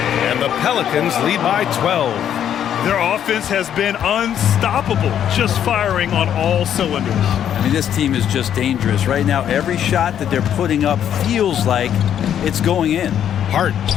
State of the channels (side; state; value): right; quieter; 9.7 dB